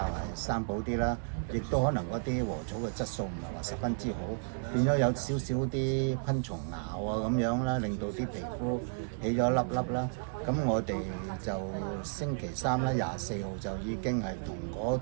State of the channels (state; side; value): silent; left; digital silence